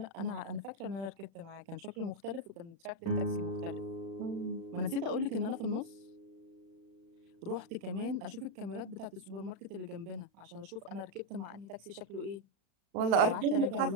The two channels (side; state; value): left; late; 36 ms